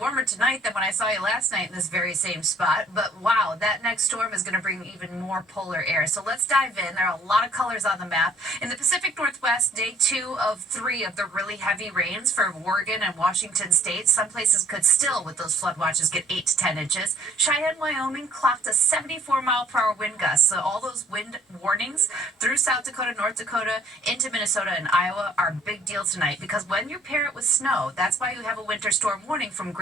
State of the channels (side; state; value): both; normal; correlation 0.60